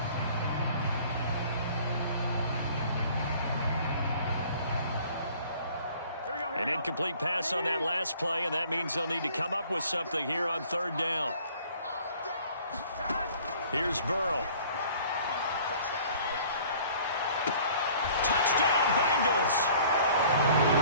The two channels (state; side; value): inverted; both; correlation -0.52